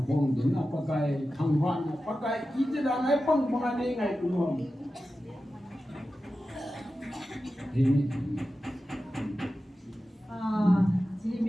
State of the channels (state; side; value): normal; both; correlation 0.93